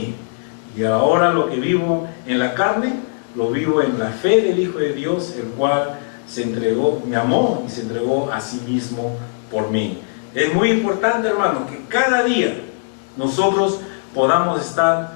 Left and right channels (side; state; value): right; silent; digital silence